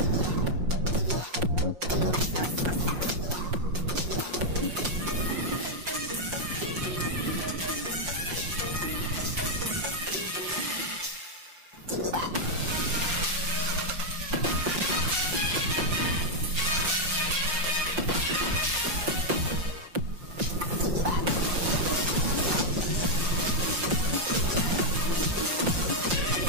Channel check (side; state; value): left; late; 5.6 ms